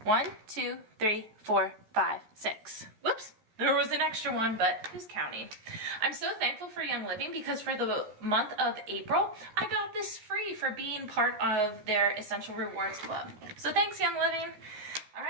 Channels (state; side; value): late; left; 14 ms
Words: 1, 2, 3, 4, 5, 6. Whoops, there was an extra one, but who's counting? I'm so thankful for Young Living because for the month of April, I got this free for being part of their Essential Rewards Club. So thanks, Young Living. All